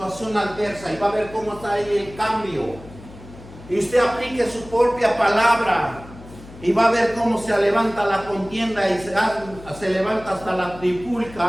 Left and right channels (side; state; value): left; noise; hum, 18 dB below the sound